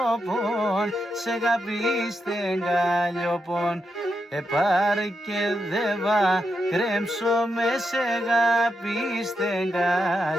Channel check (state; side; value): normal; both; correlation 0.84